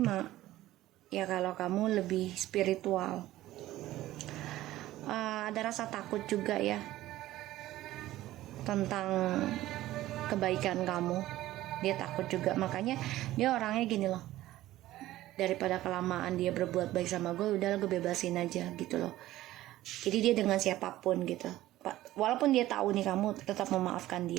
ya kalau kamu lebih spiritual. Ada rasa takut juga ya tentang kebaikan kamu. Dia takut juga, makanya dia orangnya gini loh, daripada kelamaan dia berbuat baik sama gue, udahlah gue bebasin aja gitu loh. Jadi dia dengan siapapun gitu, walaupun dia tahu nih kamu tetap memaafkan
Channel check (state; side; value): quieter; left; 15.4 dB